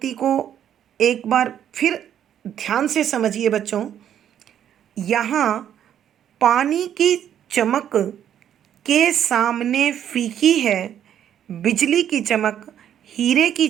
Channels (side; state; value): left; quieter; 10.0 dB